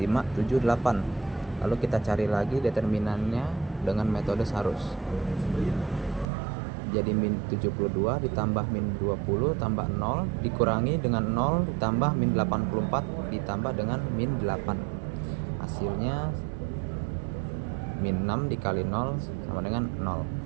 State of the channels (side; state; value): left; drops out; at 6.3 s